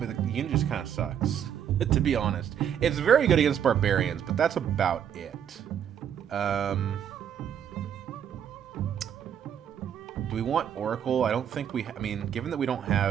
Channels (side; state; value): left; quieter; 9.0 dB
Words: the unit just kind of sucks, to be honest. It's very good against barbarians, but that's about it. Do we want Oracle? I don't think we... I mean, given that we don't